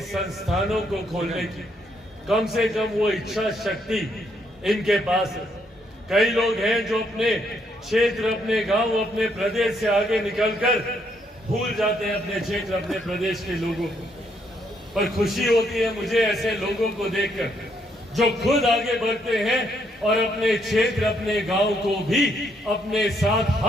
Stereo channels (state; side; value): normal; both; correlation 0.73